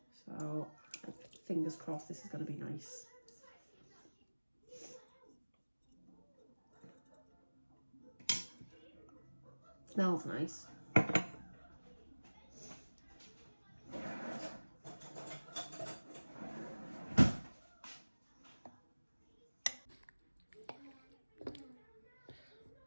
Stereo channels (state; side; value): inverted; both; correlation -1.00